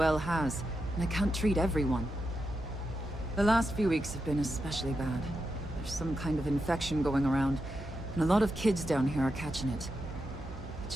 has, and I can't treat everyone. The last few weeks have been especially bad. There's some kind of infection going around, and a lot of kids down here are catching it. It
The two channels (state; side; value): normal; both; correlation 0.87